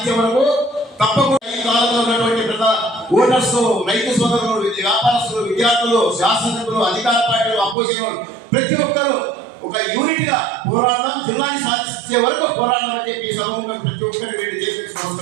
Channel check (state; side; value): drops out; left; at 7.8 s